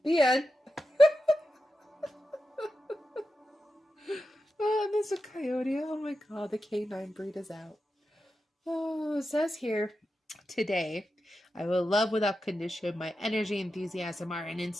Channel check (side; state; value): both; normal; correlation 0.90